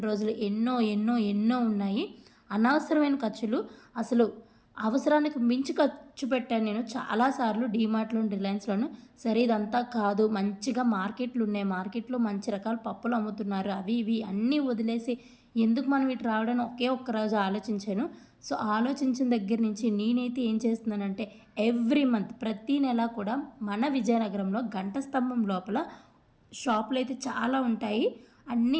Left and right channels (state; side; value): identical; both; correlation 1.00